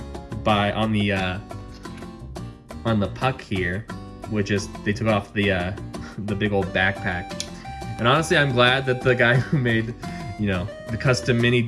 on the puck here, which is they took off the big old backpack. And honestly, I'm glad that the guy who made the custom mini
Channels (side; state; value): both; identical; correlation 1.00